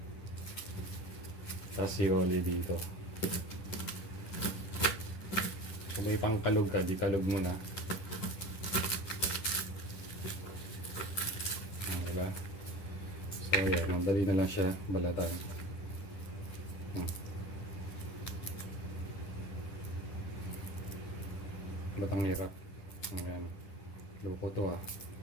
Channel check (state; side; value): late; right; 10 ms